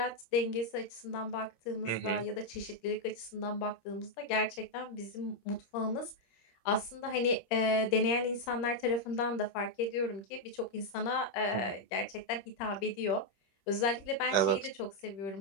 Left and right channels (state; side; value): late; right; 26 ms